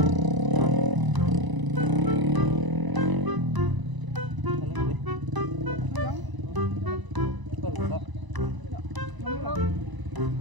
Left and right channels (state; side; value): late; left; 1.0 ms